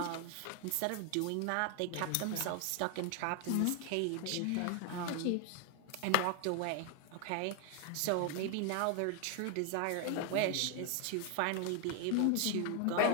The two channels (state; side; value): different; both; correlation 0.00